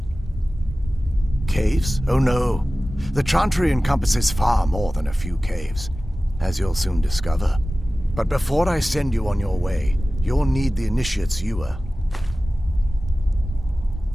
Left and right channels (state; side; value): normal; both; correlation 0.96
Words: Caves? Oh no. The Chantry encompasses far more than a few caves, as you'll soon discover. But before I send you on your way, you'll need the Initiate's ewer.